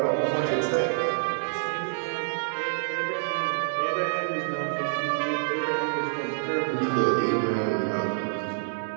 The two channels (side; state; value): left; silent; digital silence